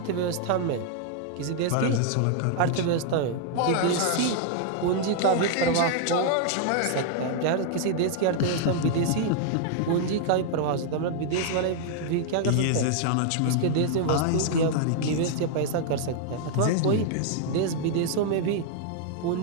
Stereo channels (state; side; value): different; both; correlation 0.00